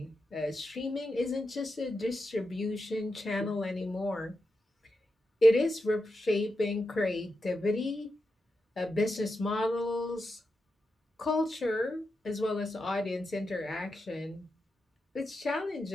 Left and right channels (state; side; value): normal; both; correlation 0.88